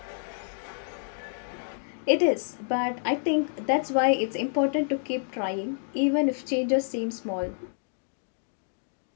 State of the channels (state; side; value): silent; right; 59 dB below the other